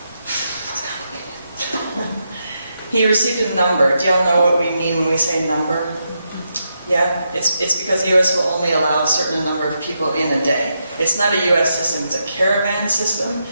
he received a number. Do y'all know what we mean when we say number? Yeah, it's because the U.S. will only allow a certain number of people in a day. It's not a U.S. system, it's a caravan system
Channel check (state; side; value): inverted; both; correlation -0.83